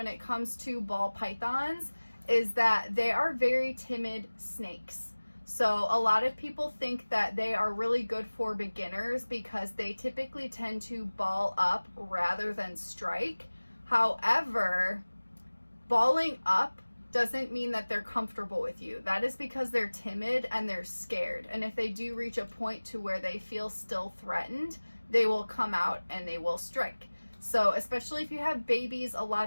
it comes to ball pythons is that they are very timid snakes. So a lot of people think that they are really good for beginners because they typically tend to ball up rather than strike. However, balling up doesn't mean that they're comfortable with you. That is because they're timid and they're scared. And if they do reach a point to where they feel still threatened, they will come out and they will strike. So especially if you have babies, a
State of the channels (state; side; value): inverted; both; correlation -1.00